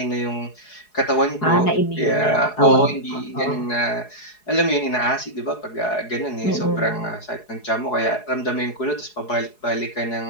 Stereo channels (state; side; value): late; right; 4.7 ms